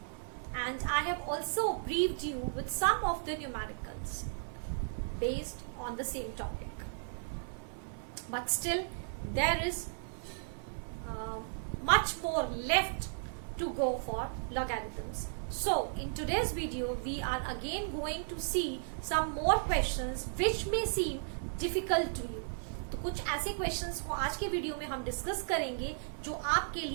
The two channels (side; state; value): left; silent; 54 dB below the other